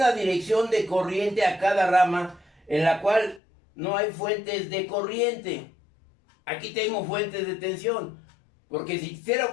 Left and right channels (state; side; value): drops out; right; at 3.4 s